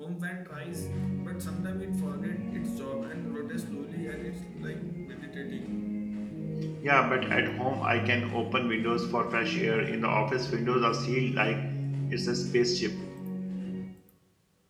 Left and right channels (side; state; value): both; identical; correlation 1.00